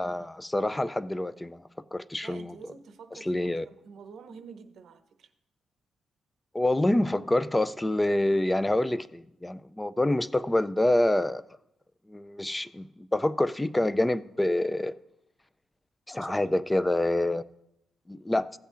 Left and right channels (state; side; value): normal; both; correlation 0.98